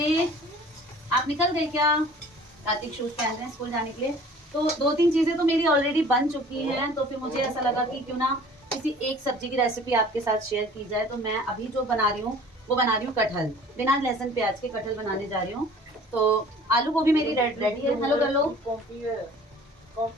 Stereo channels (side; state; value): both; normal; correlation 0.48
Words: आप निकल गए क्या? कार्तिक शूज पहन रहे हैं स्कूल जाने के लिए। तो 2-3 चीजें तो मेरी ऑलरेडी बन चुकी हैं, तो फिर मुझे ऐसा लगा कि क्यों ना किसी एक सब्जी की रेसिपी आपके साथ शेयर की जाए। तो मैं अभी जो बना रही हूँ वो बना रही हूँ कटहल, बिना लहसुन प्याज के कटहल बनाने जा रही हूँ। तो आलू गोभी मेरी रेडी है। हेलो कर लो।